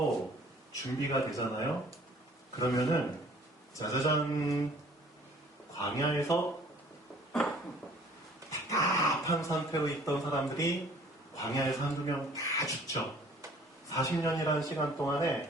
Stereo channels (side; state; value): both; normal; correlation 0.53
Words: 준비가 되잖아요. 그러면은 짜자잔, 광야에서 답답한 상태로 있던 사람들이 광야에서 한두 명 다 죽죠. 40년이라는 시간